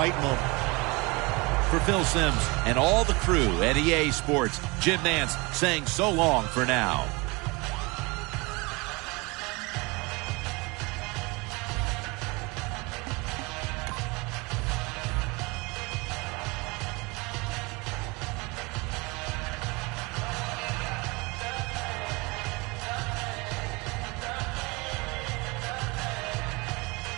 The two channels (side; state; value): left; quieter; 26.0 dB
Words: moment. For Phil Simms and all the crew at EA Sports, Jim Nantz saying so long for now.